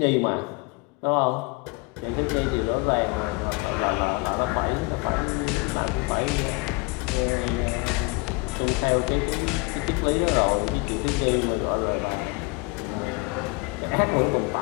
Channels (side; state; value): right; quieter; 25.7 dB